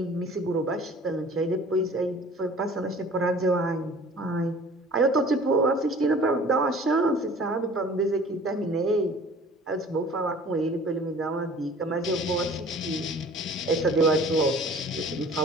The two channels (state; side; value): normal; both; correlation 0.48